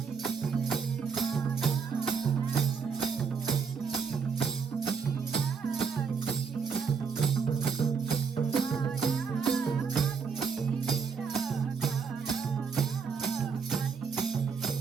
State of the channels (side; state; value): left; quieter; 5.8 dB